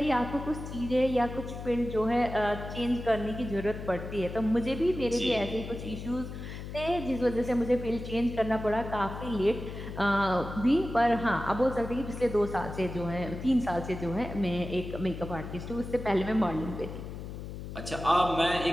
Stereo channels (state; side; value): noise; left; hum, 9 dB below the sound